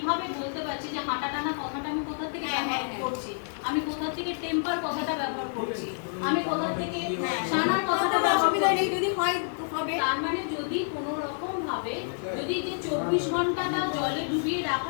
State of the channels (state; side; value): silent; right; digital silence